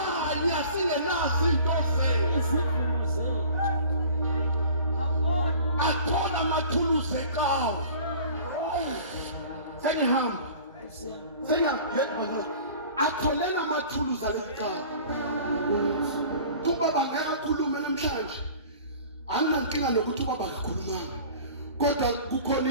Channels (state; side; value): inverted; both; correlation -0.45